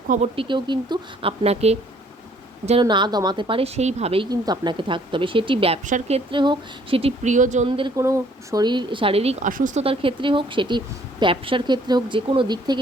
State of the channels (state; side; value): normal; both; correlation 0.61